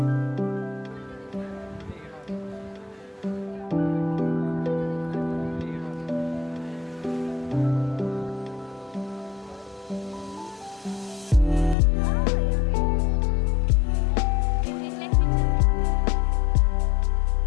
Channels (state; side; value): drops out; right; at 11.8 s